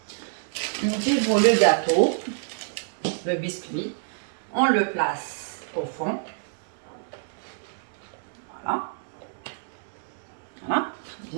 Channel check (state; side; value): silent; left; 60 dB below the other